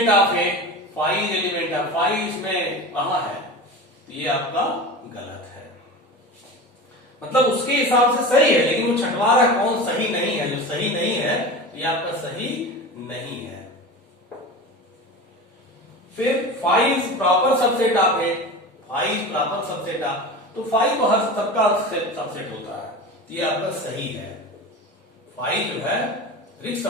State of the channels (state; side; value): normal; both; correlation 0.30